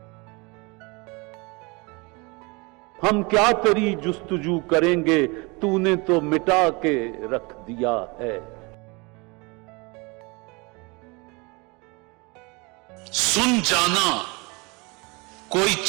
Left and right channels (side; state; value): left; quieter; 27.5 dB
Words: हम क्या तेरी जुस्तजू करेंगे, तूने तो मिटा के रख दिया है। सुन जाना कोई